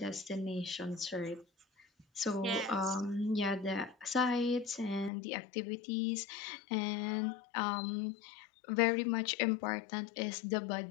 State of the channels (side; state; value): right; drops out; at 5.1 s